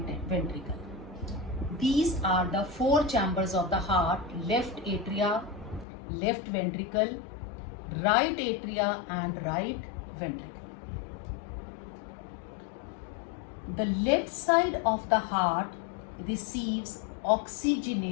ventricle. These are the 4 chambers of the heart: left atria, left ventricle, right atria and right ventricle. The left side of the heart receives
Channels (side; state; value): right; drops out; at 5.9 s